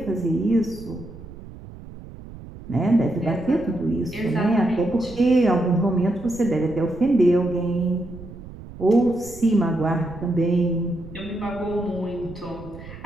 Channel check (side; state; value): right; noise; rumble, 15 dB below the sound